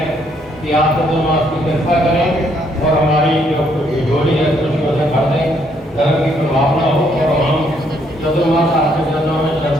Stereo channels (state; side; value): normal; both; correlation 0.70